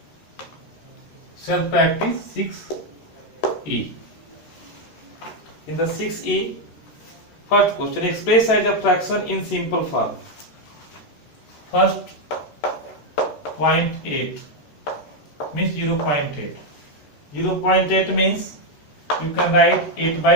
Self practice 6E. In the 6E, first question, express as a fraction in simple form. First 0.8 means 0.8. 0.8 means you can write 8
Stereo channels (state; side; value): late; right; 13 ms